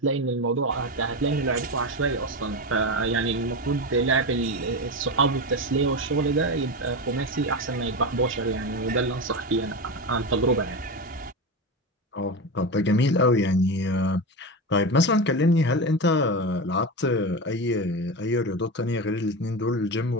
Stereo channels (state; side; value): normal; both; correlation 0.19